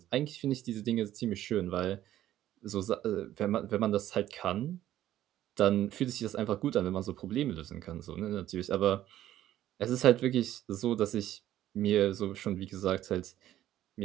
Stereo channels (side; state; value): left; quieter; 12.9 dB